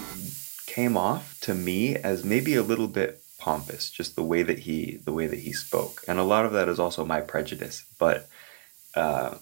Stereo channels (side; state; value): left; silent; digital silence